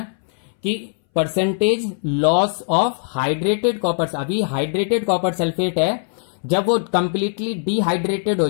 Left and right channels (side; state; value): right; silent; 62 dB below the other